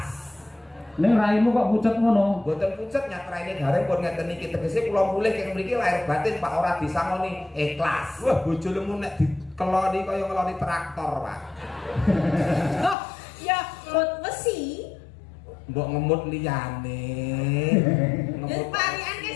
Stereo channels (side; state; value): right; drops out; at 13.0 s